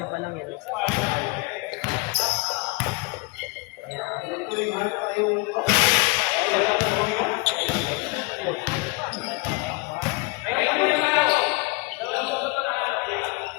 pa lang yan. Ayan.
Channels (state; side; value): quieter; right; 26.4 dB